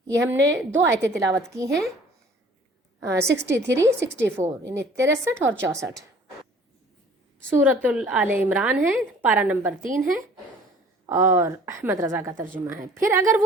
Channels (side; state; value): both; normal; correlation 0.51